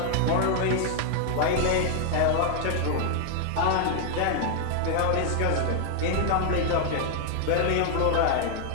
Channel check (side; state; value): both; different; correlation 0.00